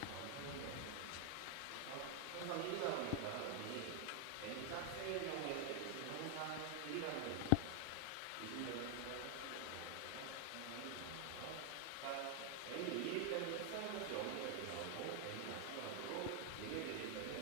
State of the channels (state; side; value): different; both; correlation 0.00